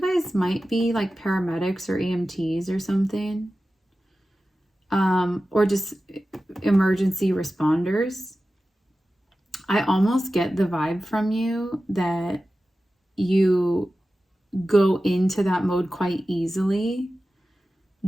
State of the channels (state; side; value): normal; both; correlation 0.94